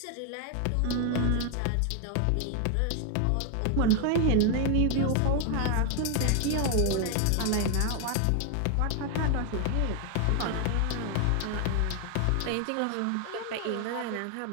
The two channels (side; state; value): both; different; correlation 0.00